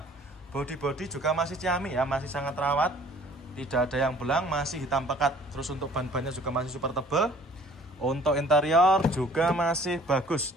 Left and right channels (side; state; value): both; normal; correlation 0.53